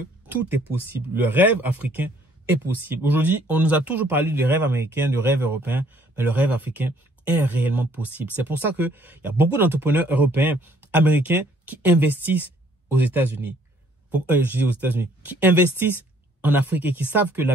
tout est possible. Le rêve africain est possible. Aujourd'hui, on nous a toujours parlé du rêve américain, du rêve européen, mais le rêve africain est réellement possible. C'est pour ça qu'il y a beaucoup d'entrepreneurs européens, américains, qui investissent aux États-Unis. Je dis aux États-Unis, qui investissent en Afrique et qui savent que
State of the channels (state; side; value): normal; both; correlation 0.62